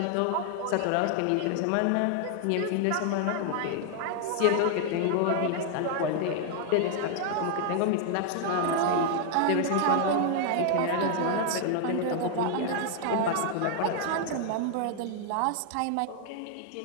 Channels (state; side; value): different; both; correlation 0.00